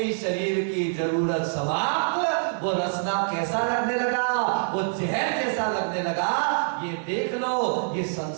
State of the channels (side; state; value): left; silent; digital silence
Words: शरीर की जरूरत समाप्त, वो रसना कैसा लगने लगा? वो जहर जैसा लगने लगा। ये देख लो, ये